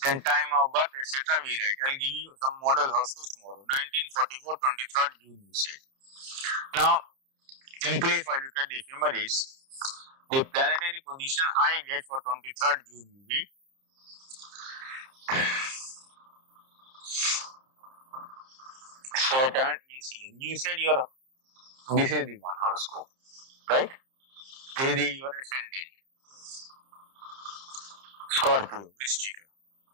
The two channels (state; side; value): late; left; 30 ms